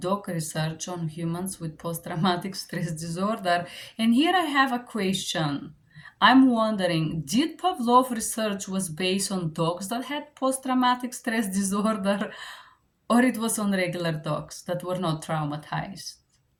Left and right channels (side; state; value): both; identical; correlation 1.00